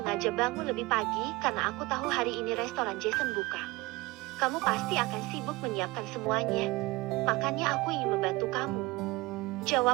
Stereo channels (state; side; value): quieter; left; 21.9 dB